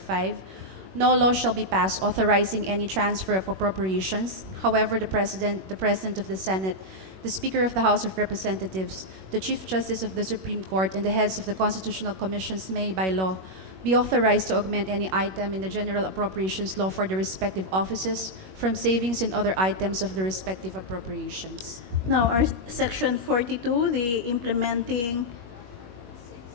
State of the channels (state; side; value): late; left; 21 ms